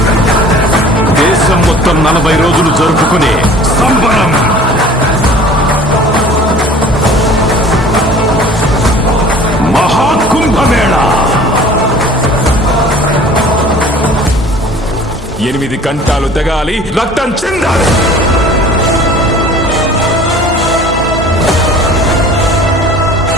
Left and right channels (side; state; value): both; normal; correlation 0.47